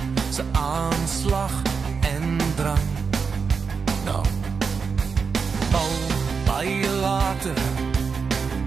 se aanslag en drang. Nou, al baie later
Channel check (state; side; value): quieter; left; 5.5 dB